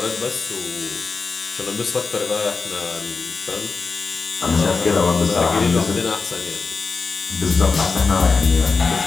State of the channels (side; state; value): right; quieter; 4.5 dB